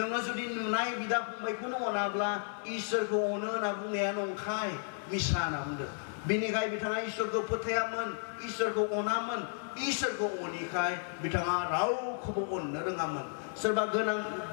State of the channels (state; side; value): silent; right; digital silence